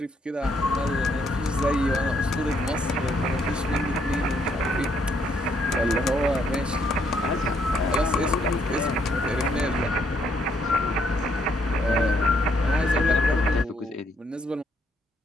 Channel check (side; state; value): both; normal; correlation 0.72